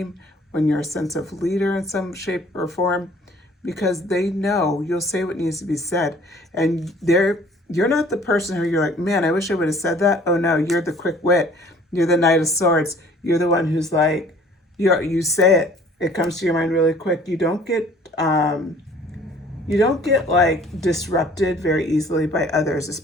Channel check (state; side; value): normal; both; correlation 0.53